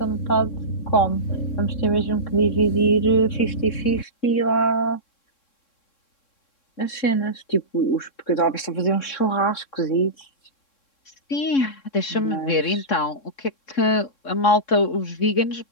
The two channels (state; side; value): late; right; 3.6 ms